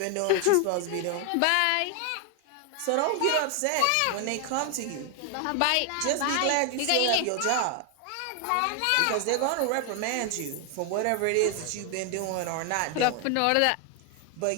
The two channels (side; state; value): both; different; correlation 0.00